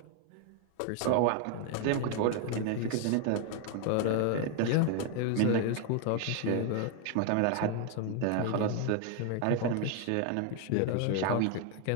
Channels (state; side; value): different; both; correlation 0.01